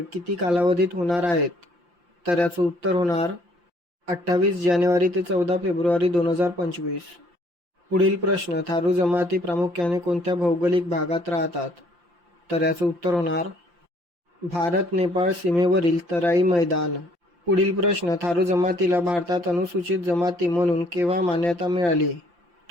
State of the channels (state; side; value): late; left; 5.8 ms